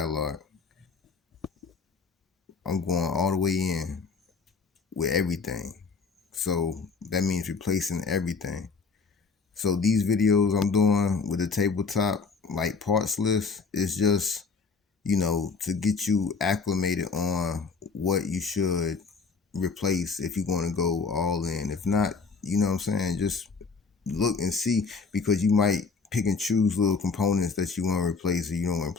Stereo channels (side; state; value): right; quieter; 4.8 dB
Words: I'm going all the way in with everything. So that means replacing everything. So these videos I'm doing with the tabletop, like parts list, is just, to get you acclimated on what you should replace if you're going to go all in. If not, you know what I'm saying, just look and see, because you might pick and choose little components that you want to replace or you don't want to